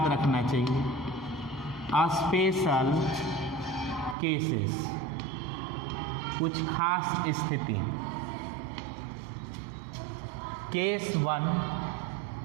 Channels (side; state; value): left; drops out; at 4.2 s